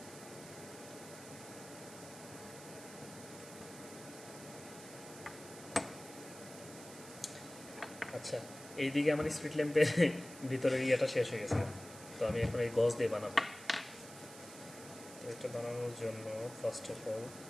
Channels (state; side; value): noise; right; hiss, 15 dB below the sound